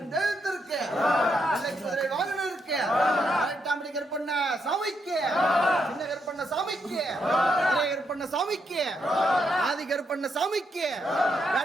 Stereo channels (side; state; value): both; normal; correlation 0.79